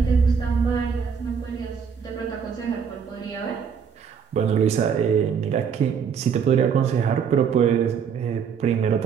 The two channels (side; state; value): left; quieter; 6.8 dB